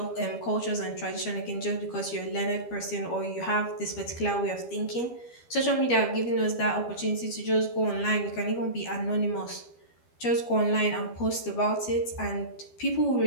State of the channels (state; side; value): late; right; 12 ms